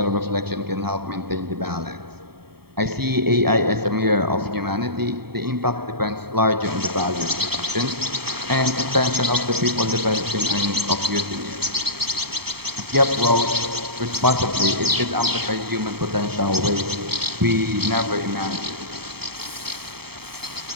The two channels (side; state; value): left; late; 0.96 ms